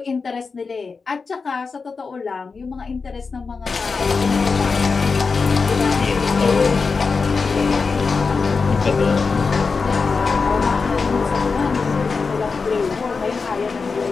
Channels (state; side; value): quieter; right; 4.7 dB